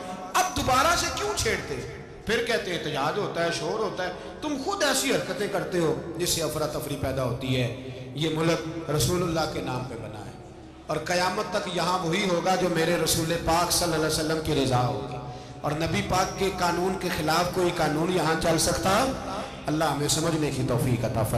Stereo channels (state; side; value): identical; both; correlation 1.00